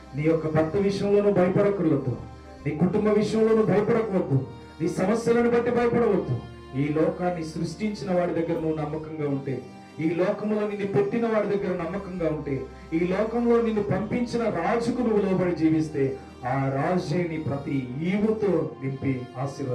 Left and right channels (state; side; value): identical; both; correlation 1.00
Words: నీ యొక్క భర్త విషయంలో నువ్వు భయపడక్కర్లేదు, నీ కుటుంబ విషయంలో నువ్వు భయపడకవద్దు, నీ సమస్యలను బట్టి భయపడవద్దు. ఈ లోకాన్ని సృష్టించిన వాడి దగ్గర నువ్వు నమ్మకంగా ఉంటే, ఈ లోకంలో నిన్ను పెట్టిన వాడి దగ్గర నమ్మకంగా ఉంటే, ఈ లోకంలో నిన్ను పంపించిన రాజుకు నువ్వు లోబడి జీవిస్తే, ఆ రాజే నీ ప్రతి ఈవుతో నింపి